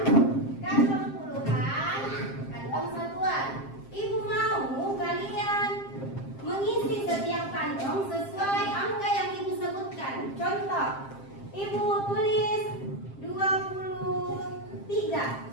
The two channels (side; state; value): right; late; 7.5 ms